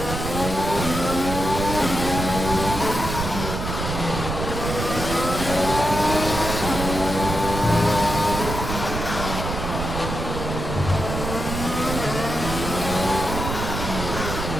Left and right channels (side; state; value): right; noise; rumble, 5 dB below the sound